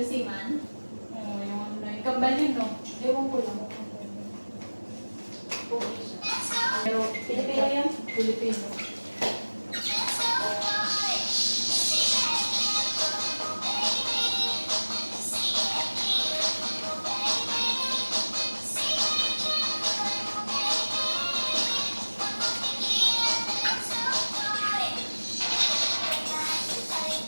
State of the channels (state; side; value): inverted; both; correlation -1.00